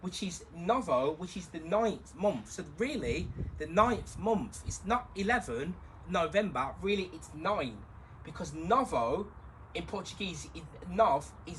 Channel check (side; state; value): both; identical; correlation 1.00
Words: is the 9th month. So really, the 9th month is not 11 November. Really, it's 9, because Novo in Portuguese, Nove